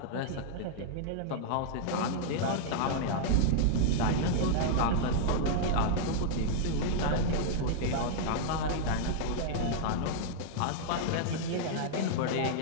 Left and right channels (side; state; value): both; different; correlation -0.01